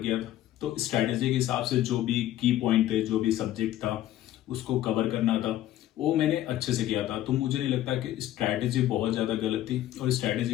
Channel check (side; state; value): right; quieter; 13.4 dB